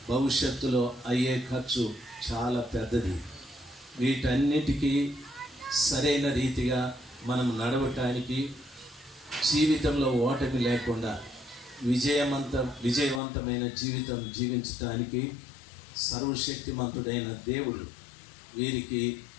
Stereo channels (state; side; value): drops out; right; at 13.2 s